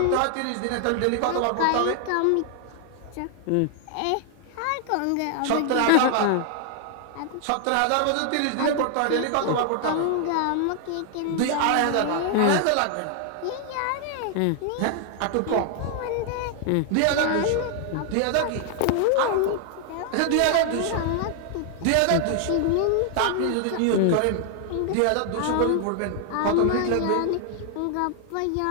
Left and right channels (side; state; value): both; different; correlation 0.00